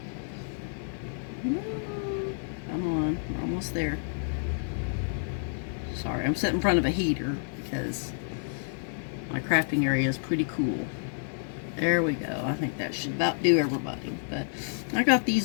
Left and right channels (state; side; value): silent; right; digital silence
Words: Come on, we're almost there. Sorry, I'm sitting in front of a heater because my crafting area is pretty cool. There we go. I think that should about do everybody. But I got